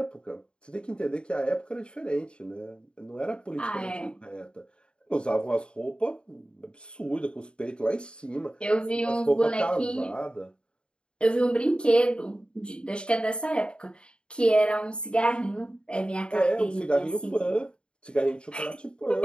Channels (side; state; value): right; late; 0.053 ms